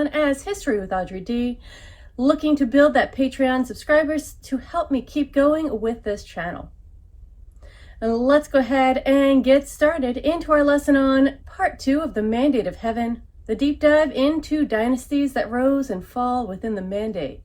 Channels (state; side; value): identical; both; correlation 1.00